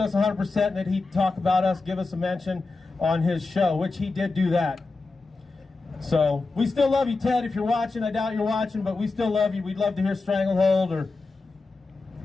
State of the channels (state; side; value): quieter; right; 3.7 dB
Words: 100% and that he'd talk about us, give us a mention on his show, which he did do that. So we still love you, Ted, if you're watching. I doubt you're watching, but we still love you. We'd love to hear Stranglehold or